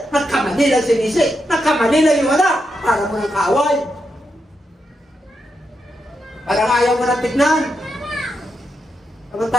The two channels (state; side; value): normal; both; correlation 0.84